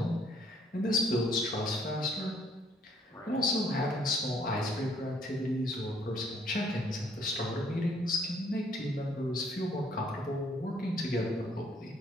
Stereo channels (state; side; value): normal; both; correlation 0.64